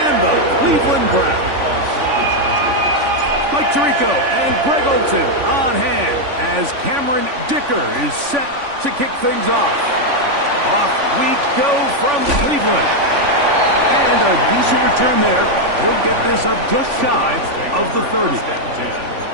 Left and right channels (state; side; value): late; left; 3.5 ms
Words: the Cleveland Browns. Mike Tirico and Greg Olsen on hand as Cameron Dicker is set to kick things off. Off we go from Cleveland. And a decent return there. He'll get this up just shy of the 30.